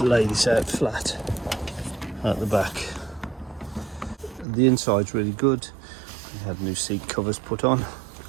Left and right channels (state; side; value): drops out; left; at 4.5 s